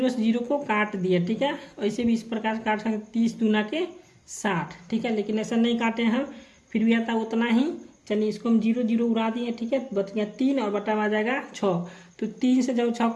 से 0 को काट दिए। ठीक है, ऐसे भी इस प्रकार से काट सकते 30 दूना के 60। ठीक है, लेकिन ऐसा नहीं काटे हम, फिर भी आता उतना ही। चलिए इसको हम 0 उड़ा दिए। ठीक है, बच गया 3 और बटा में आ जाएगा 6। तो 3 से जब 6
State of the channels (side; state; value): both; identical; correlation 1.00